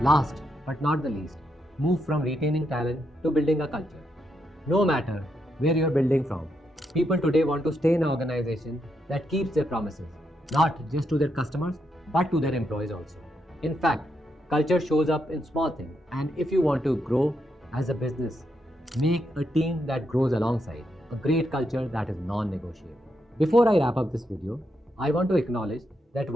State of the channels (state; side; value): normal; both; correlation 0.81